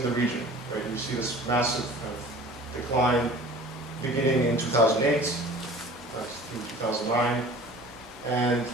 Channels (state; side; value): normal; both; correlation 0.44